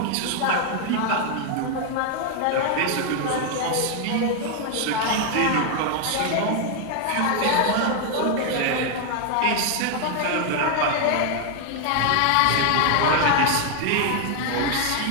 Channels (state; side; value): different; both; correlation 0.00